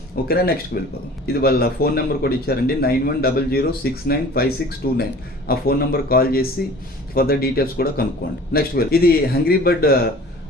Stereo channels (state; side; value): normal; both; correlation 0.45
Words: ఓకేనా? నెక్స్ట్ వెళ్ళిపోదాం. ఇది వాళ్ళ ఫోన్ నెంబర్ కూడా ఇచ్చారండి, 9100695629. ఆ ఫోన్ నెంబర్ కాల్ చేసి ఫర్దర్ డీటెయిల్స్ కూడా కనుక్కోండి. నెక్స్ట్ ఇది హంగ్రీ బర్డ్